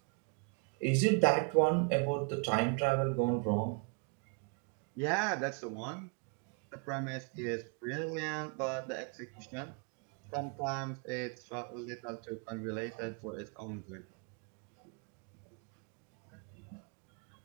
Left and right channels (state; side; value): quieter; left; 34.7 dB